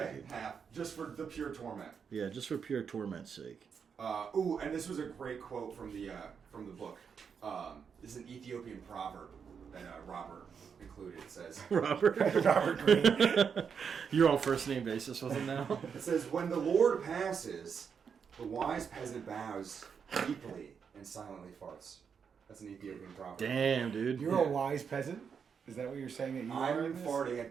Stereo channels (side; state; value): left; quieter; 6.6 dB